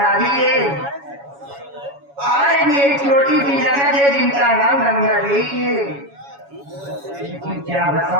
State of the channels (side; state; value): left; late; 7.1 ms